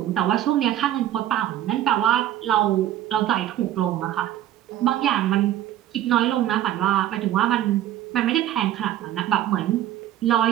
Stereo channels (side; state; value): left; quieter; 12.5 dB